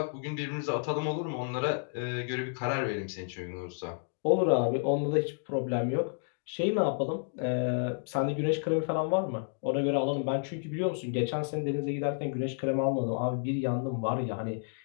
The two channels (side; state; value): right; silent; digital silence